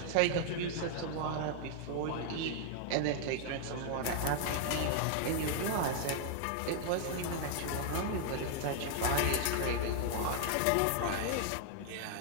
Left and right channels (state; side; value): different; both; correlation 0.00